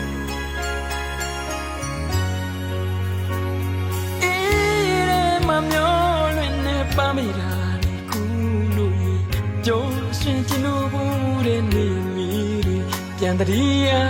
ပါမိတာလေကူလို့ကြိုးရှင်ချင်လို့ဘူးတဲ့နေမီပြန်တည်းရ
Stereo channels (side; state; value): both; identical; correlation 1.00